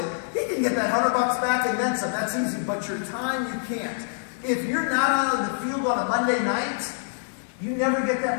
He can get that $100 back and then some. That's easy. But your time, you can't. If you're not on the field on a Monday night, you never get that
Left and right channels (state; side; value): silent; right; 61 dB below the other